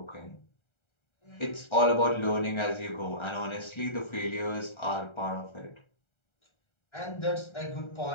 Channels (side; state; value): right; late; 1.3 ms